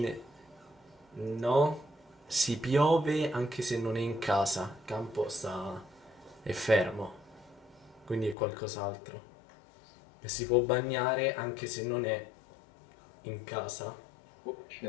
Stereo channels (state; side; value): drops out; right; at 8.3 s